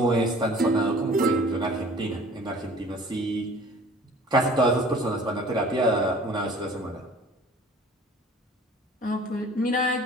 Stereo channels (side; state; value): both; normal; correlation 0.48